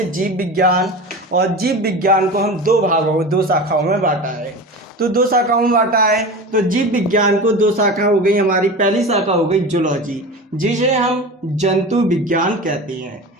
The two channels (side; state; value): both; normal; correlation 0.30